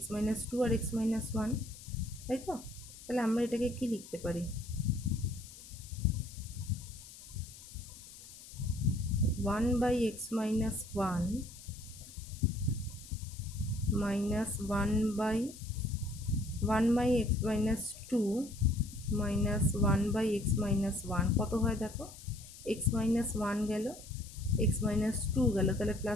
- 2 আর x - 1, তাই তো? তাহলে আমরা এটাকে কি লিখতে পারি, 1/x - 1 minus 1/x - 2 minus 1/x - 1 কত হয় দেখো, x-1 গেল, x-2 গেল, তাহলে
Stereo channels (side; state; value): left; noise; hiss, 17 dB below the sound